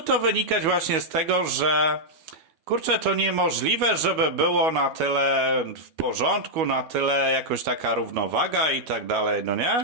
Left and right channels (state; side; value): late; left; 12 ms